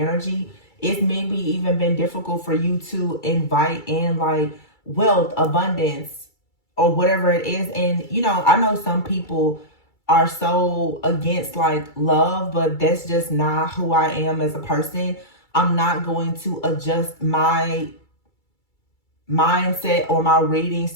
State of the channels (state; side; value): late; right; 2.3 ms